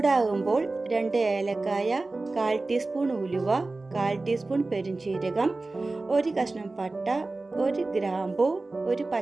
2 ഏലക്കായ, 1/4 ടീസ്പൂൺ ഉലുവ, 1/4 ടീസ്പൂൺ പെരുംജീരകം, 1 കഷ്ണം പട്ട, 1 ഗ്രാമ്പു, 1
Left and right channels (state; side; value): quieter; left; 3.3 dB